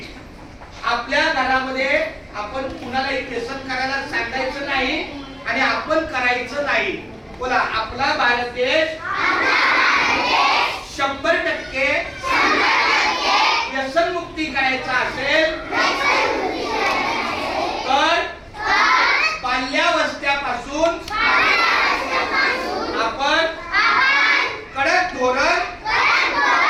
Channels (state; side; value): identical; both; correlation 1.00